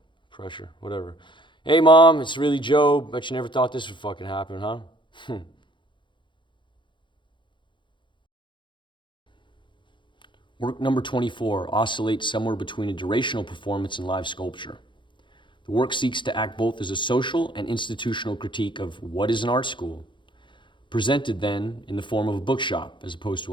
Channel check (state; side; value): late; right; 0.23 ms